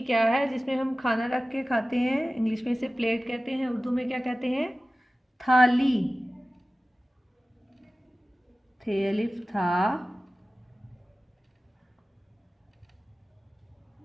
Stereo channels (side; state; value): both; normal; correlation 0.96